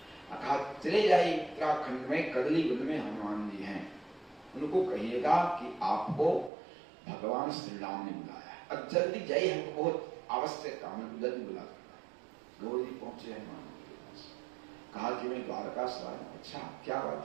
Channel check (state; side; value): drops out; left; at 6.5 s